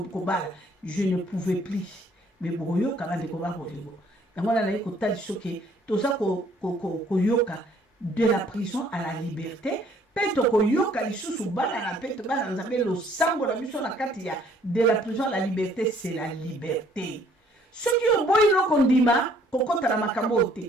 bal je ne pouvais plus mais boyo ka bande ko ba bolingo ngala na ko tali soke to za ko yoka de la prison à la liberté peto ko yoka lisusu bala na peto bala na Nzambe lo sango la mission na kati ya de la prison à la liberté c'est la liberté ce qui est boyo ko ndima ko kota na makambo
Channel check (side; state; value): both; normal; correlation 0.61